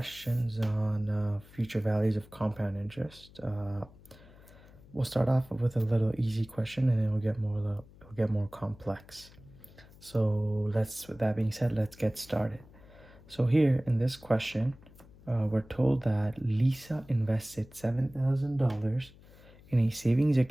on future values of compound interest. We'll start off with a little easy question, and then it'll get more complex. So with that being said, let's get started. So here in this question, we're told that Lisa invested $7,000 in a savings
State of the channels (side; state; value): left; noise; hum, 23 dB below the sound